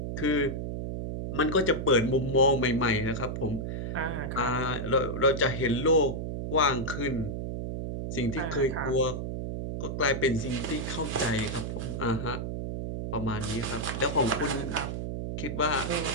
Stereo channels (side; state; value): right; noise; hum, 4 dB below the sound